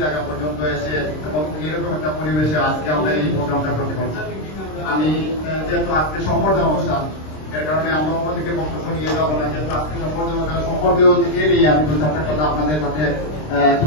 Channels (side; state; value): right; late; 26 ms